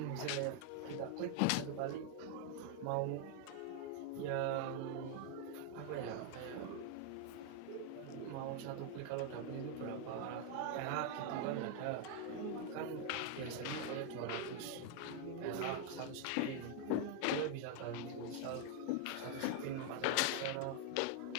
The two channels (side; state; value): both; different; correlation 0.00